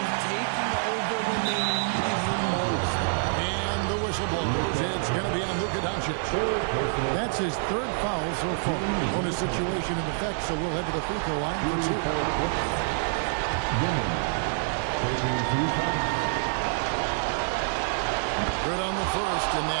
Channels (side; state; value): left; silent; digital silence